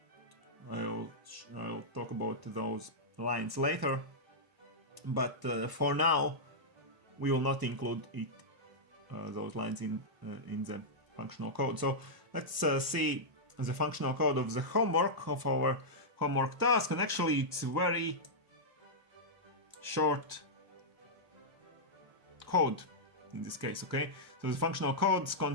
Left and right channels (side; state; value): left; late; 1.1 ms